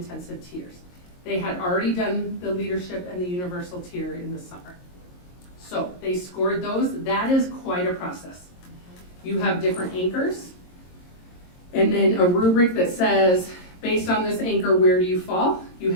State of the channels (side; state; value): right; late; 22 ms